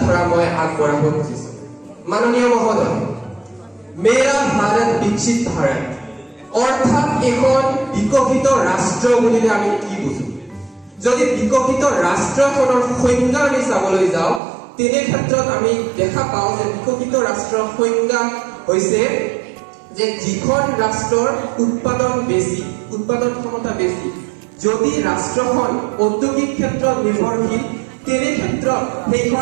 মই আগবঢ়াব খুজিছো। মাননীয় মহোদয়, মেৰা ভাৰত বিকশিত ভাৰত অৰ্থাৎ এখন বিকশিত ৰাষ্ট্ৰ বুলিলে আমি কি বুজো? যদি বিকশিত ৰাষ্ট্ৰখনৰ সংজ্ঞা আমি চাবলৈ যাওঁ, তেনে ক্ষেত্ৰত আমি দেখা পাওঁ যে বিকশিত ৰাষ্ট্ৰৰ সংজ্ঞা হৈছে যে যিখন ৰাষ্ট্ৰৰ উৎপাদন বেছি, উৎপাদন ক্ষমতা বেছি। যদি ৰাষ্ট্ৰখন ঔদ্যোগিক ক্ষেত্ৰত নিৰ্ভৰশীল, তেনে ক্ষেত্ৰত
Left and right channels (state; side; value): drops out; left; at 14.4 s